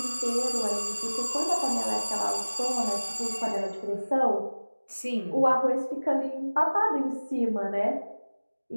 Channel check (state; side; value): inverted; both; correlation -1.00